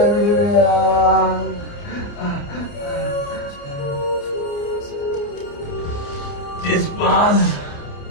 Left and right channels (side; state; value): right; late; 29 ms